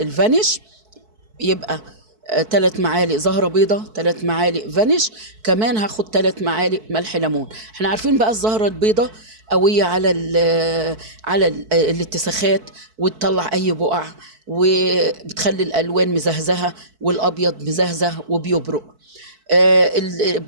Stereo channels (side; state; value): left; late; 4.6 ms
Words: الفانيش، يبقى 3 معالق زهرة بيضة، 3 معالق فانيش. كمان هاخد 3 معالق ملح ليمون. احنا عارفين بقى الزهرة البيضة قوية على الاتساخات، وتطلع اي بقع، وبتخلي الالوان مزهزهة، والابيض مزهزه وبيبرق.